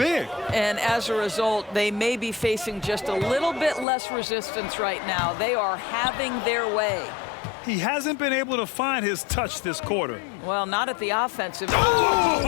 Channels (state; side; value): drops out; right; at 3.9 s